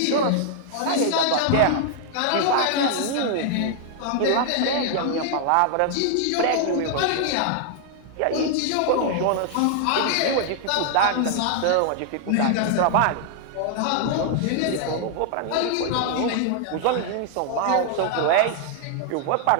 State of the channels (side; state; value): both; different; correlation 0.00